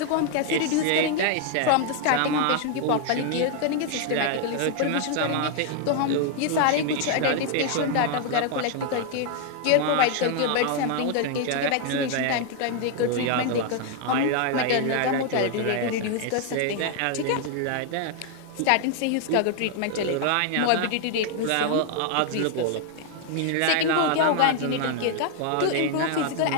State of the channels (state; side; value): different; both; correlation 0.00